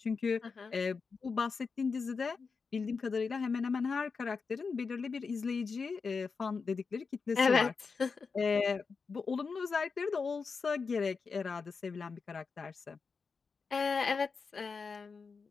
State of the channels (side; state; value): right; quieter; 5.0 dB